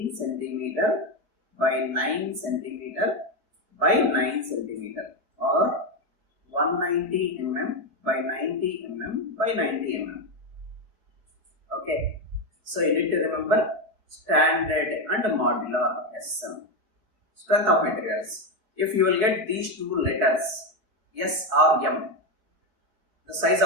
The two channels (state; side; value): late; left; 4.5 ms